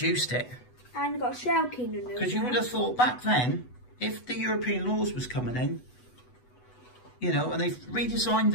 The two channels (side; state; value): right; late; 8.1 ms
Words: it? And got a shell keen in there. Because you would have thought back then, if the European laws was coming in, you know, and they've redesigned